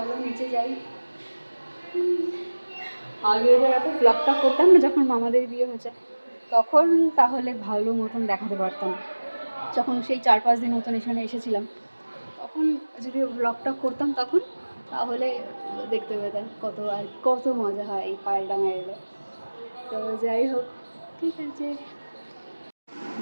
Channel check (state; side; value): inverted; both; correlation -1.00